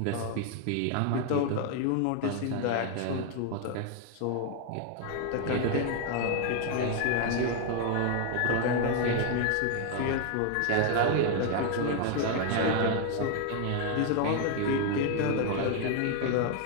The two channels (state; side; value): different; both; correlation 0.00